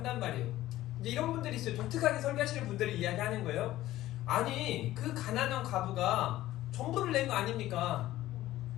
말이에요. 이제 이런 분들이 있어요. 독특하게 설교하시는 분들이 이야기하는 거예요. 아니, 그 가난한 과부가 전부를 낸 거 아닙니까?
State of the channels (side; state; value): right; quieter; 15.2 dB